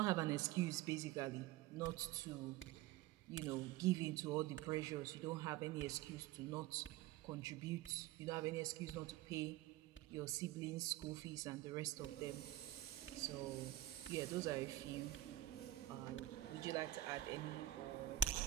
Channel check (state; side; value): quieter; left; 15.2 dB